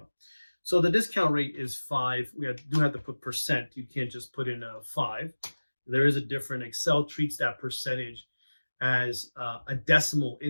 So the discount rate is 5. Do have to put percent. You can't just put in a 5. There is a different. Excel treats that percentage as a decimal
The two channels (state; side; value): inverted; both; correlation -1.00